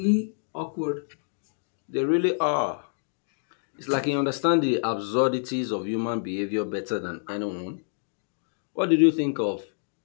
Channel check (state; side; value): silent; right; digital silence